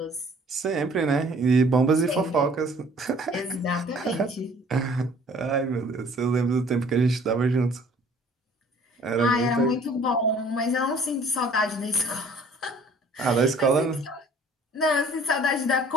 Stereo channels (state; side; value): normal; both; correlation 0.54